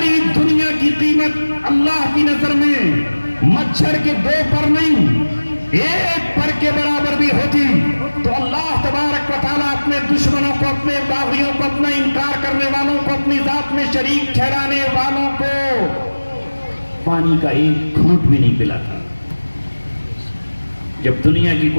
دنیا کی قیمت اللہ کی نظر میں مچھر کے 2 پر نہیں 1 پر کے برابر بھی ہوتی تو اللہ تبارک و تعالیٰ اپنے دشمنوں کو، اپنے باغیوں کو، اپنا انکار کرنے والوں کو، اپنی ذات میں شریک ٹھہرانے والوں کو پانی کا 1 گھونٹ بھی نہیں پلاتا. جب دنیا کی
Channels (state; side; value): inverted; both; correlation -1.00